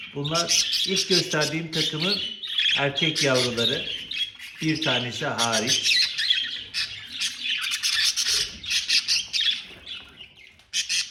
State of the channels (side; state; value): both; identical; correlation 1.00